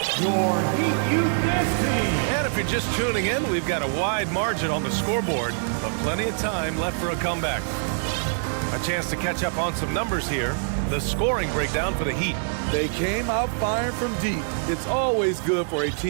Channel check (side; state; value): left; silent; digital silence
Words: your Heat Youth Dance Team. And if you're just tuning in, we've got a wide margin on the scoreboard, but plenty of time left for a comeback. A chance to catch up on some numbers here. The scoring breakdown for the Heat. They came out firing from deep. It's always good for a